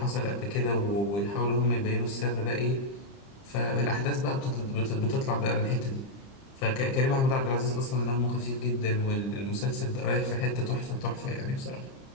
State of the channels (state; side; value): late; right; 30 ms